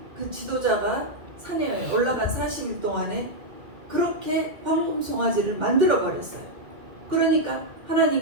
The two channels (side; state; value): left; late; 2.0 ms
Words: 그 지도자가 산에 올라간 40일 동안에 그렇게 황금 송아지를 만들어 버렸어요. 그러니까